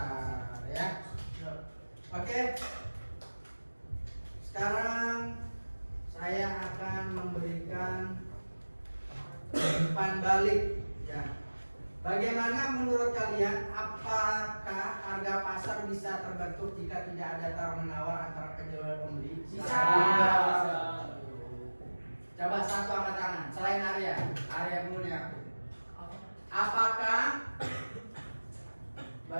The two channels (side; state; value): both; inverted; correlation -1.00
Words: ya. Oke. Sekarang saya akan memberikan umpan balik, ya. Bagaimana menurut kalian, apakah harga pasar bisa terbentuk jika tidak ada tawar menawar antara penjual dan pembeli? Bisa. Coba satu angkat tangan, selain Arya dulu nih aku.